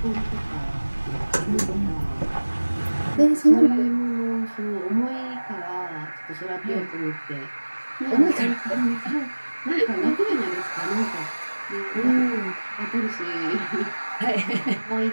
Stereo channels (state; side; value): inverted; both; correlation -1.00